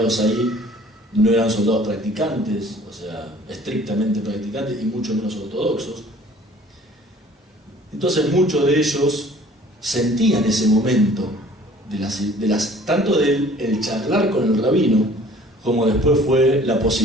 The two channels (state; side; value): normal; both; correlation 0.52